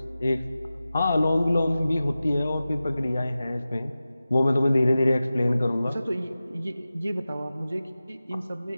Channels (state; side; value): inverted; both; correlation -0.95